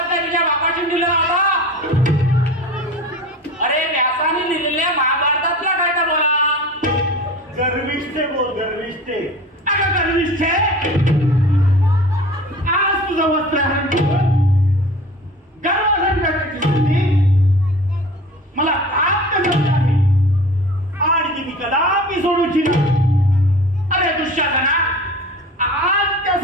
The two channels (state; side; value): normal; both; correlation 0.39